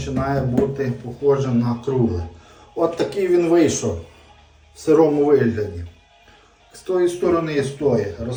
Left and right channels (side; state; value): both; identical; correlation 1.00